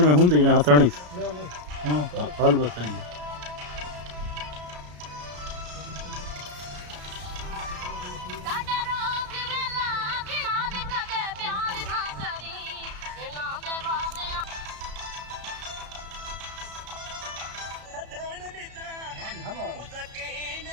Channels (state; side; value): late; left; 33 ms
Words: होंगे ना हथानी हाँ हाल बताइए